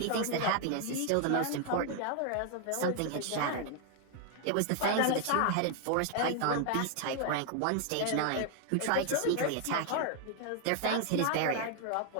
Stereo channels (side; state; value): both; different; correlation 0.00